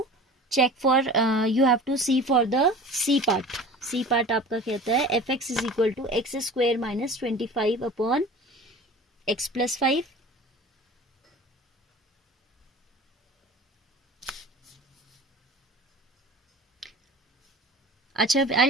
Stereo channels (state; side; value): normal; both; correlation 0.39